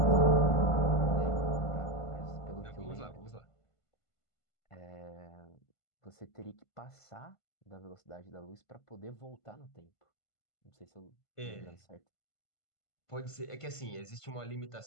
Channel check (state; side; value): late; right; 1.5 ms